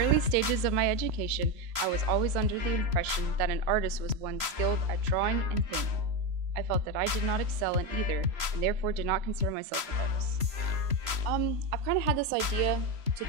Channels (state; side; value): late; left; 3.0 ms